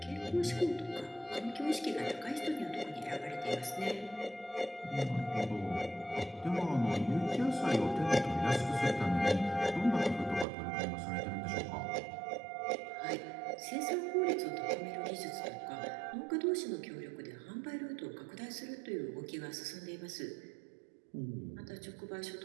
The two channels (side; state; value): left; drops out; at 10.5 s